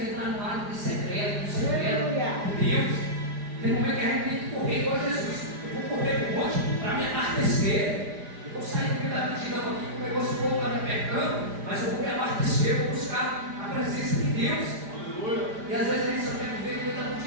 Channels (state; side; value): late; left; 4.9 ms